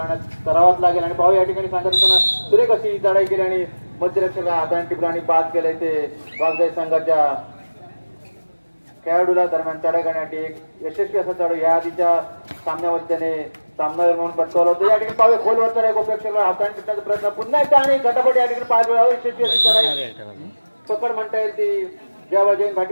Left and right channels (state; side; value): inverted; both; correlation -1.00